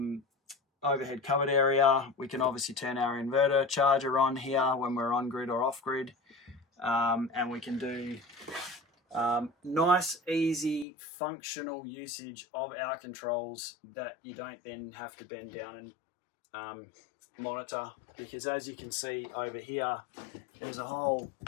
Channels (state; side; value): drops out; right; at 10.9 s